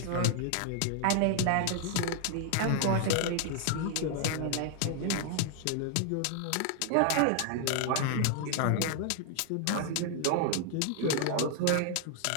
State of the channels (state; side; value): different; both; correlation 0.00